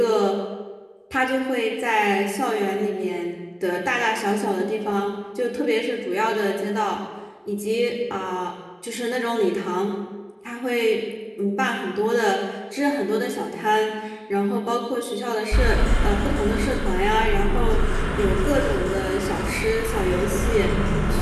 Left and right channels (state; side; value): identical; both; correlation 1.00